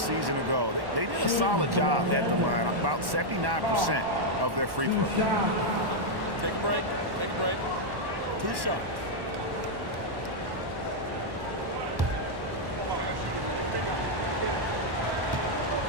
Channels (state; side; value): late; left; 1.1 ms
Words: ago. They did a solid job at the line, about 79% of their free throws. Take a break. Take a break. 2 shots.